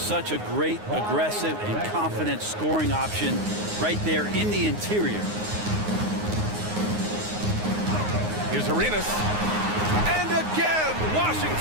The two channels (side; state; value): left; late; 9.6 ms